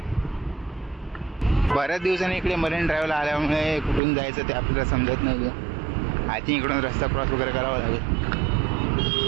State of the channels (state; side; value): drops out; left; at 4.0 s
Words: बऱ्याच दिवसांनी इकडे मरीन ड्राईव्हला आल्यामुळे कुठून जायचं ते आपल्याला समजत नाही. आय थिंक इकडून रस्ता क्रॉस वगैरे करावा लागेल.